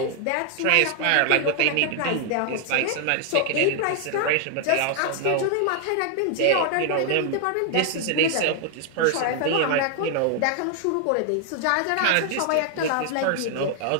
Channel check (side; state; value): both; different; correlation 0.00